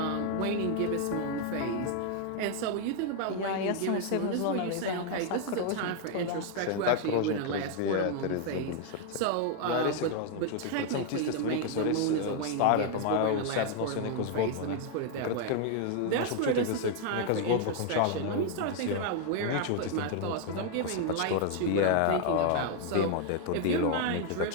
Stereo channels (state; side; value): different; both; correlation 0.00